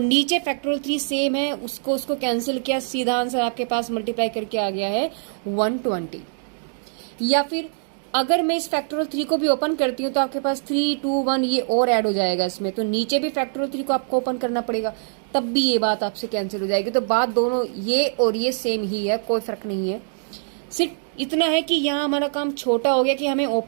नीचे फैक्टोरियल 3 सेम है उसको कैंसिल किया, सीधा आंसर आपके पास मल्टीप्लाई करके आ गया है 120। या फिर अगर मैं इस फैक्टोरियल 3 को भी ओपन करती हूँ तो आपके पास 3, 2, 1 ये और ऐड हो जाएगा इसमें, तो नीचे भी फैक्टोरियल 3 को आपको ओपन करना पड़ेगा, तब भी ये बात आपसे कैंसिल हो जाएगी। तो बात दोनों ये और ये सेम ही है, कोई फर्क नहीं है। सिर्फ इतना है कि यहाँ हमारा काम छोटा हो गया कि हमें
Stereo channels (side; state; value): left; silent; digital silence